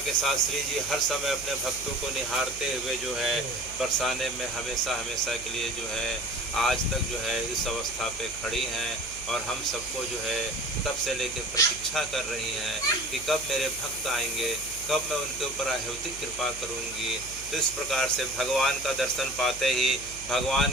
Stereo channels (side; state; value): right; noise; hum, 16 dB below the sound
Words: साथ श्री जी हर समय अपने भक्तों को निहारते हुए जो है बरसाने में हमेशा हमेशा के लिए जो है आज तक जो है इस अवस्था पे खड़ी हैं और हम सबको जो है तब से लेकर प्रतीक्षा कर रही हैं कि कब मेरे भक्त आएंगे, कब मैं उनके ऊपर अहौतिक कृपा करूंगी। तो इस प्रकार से भगवान का दर्शन पाते ही, भगवान